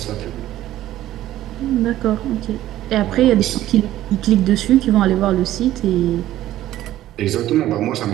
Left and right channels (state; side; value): quieter; left; 13.9 dB